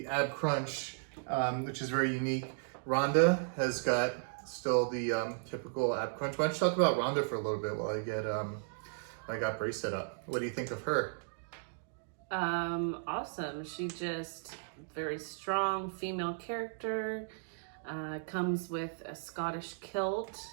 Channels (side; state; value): left; silent; digital silence